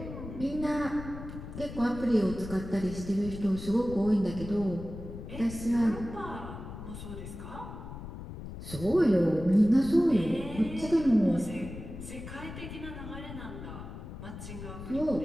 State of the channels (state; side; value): noise; left; rumble, 11 dB below the sound